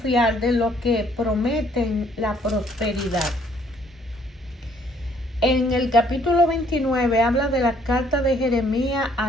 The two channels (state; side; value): normal; both; correlation 0.63